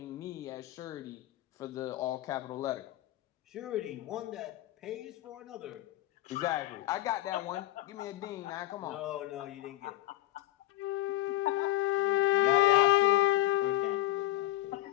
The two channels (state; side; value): quieter; right; 15.4 dB